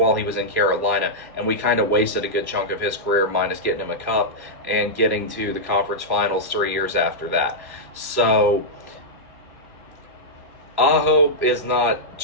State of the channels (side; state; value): left; late; 1.6 ms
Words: he was in Carolina, and we kind of wasted a good chunk of his career, minus getting him a cup and getting to the conference finals 3 years after that. So Aho is not